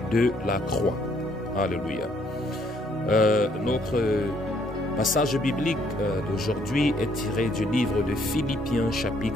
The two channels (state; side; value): normal; both; correlation 0.67